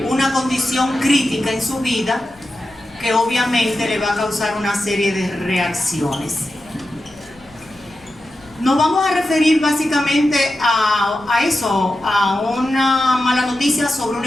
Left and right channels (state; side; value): noise; left; rumble, 27 dB below the sound